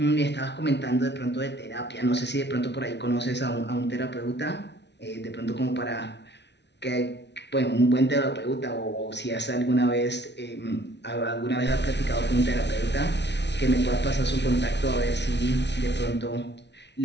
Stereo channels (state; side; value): late; right; 0.50 ms